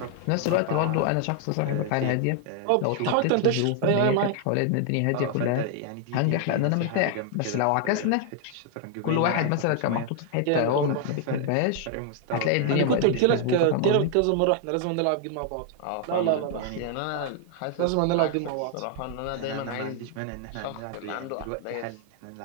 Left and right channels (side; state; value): both; different; correlation 0.00